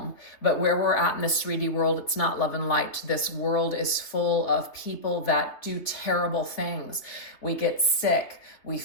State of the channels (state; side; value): late; right; 3.5 ms